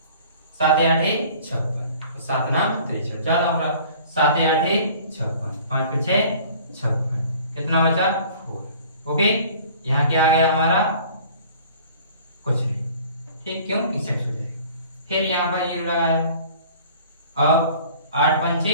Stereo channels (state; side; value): inverted; both; correlation -0.49